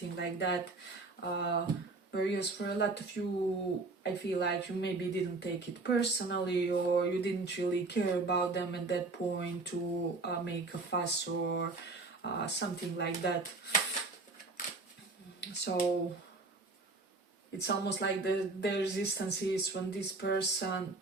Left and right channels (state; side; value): quieter; left; 3.5 dB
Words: like that. Whereas for a lot of you, I feel like you maybe didn't take it personally, or you didn't really care about them at that point to make a fuss or something like that. So it's almost like the resistance is when this person